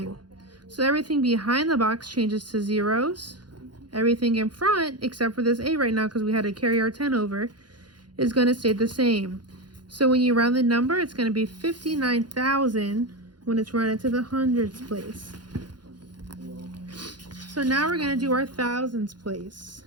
So everything behind the box changes to zeros. Everything in front, except for this 8 right now because we had to carry our 10 over, is going to stay the same. So when you round the number, it's going to be 59,000 when it's rounded to the hundreds place. So now we're going to do our thousands place.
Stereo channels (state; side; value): late; left; 0.71 ms